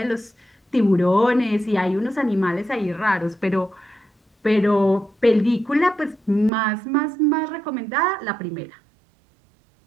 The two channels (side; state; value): left; drops out; at 6.5 s